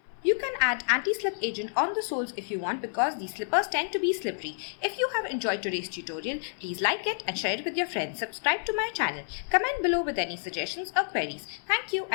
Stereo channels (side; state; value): right; silent; 58 dB below the other